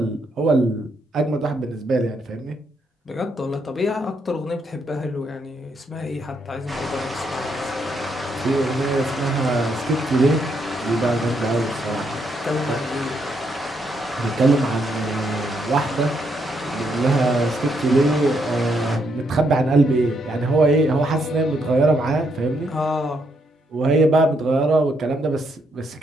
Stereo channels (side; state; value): both; normal; correlation 0.76